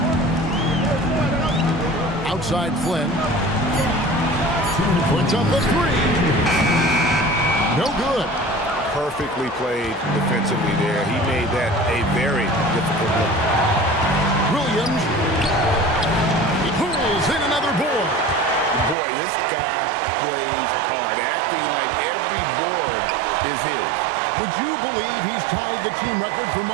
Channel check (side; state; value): left; drops out; at 18.9 s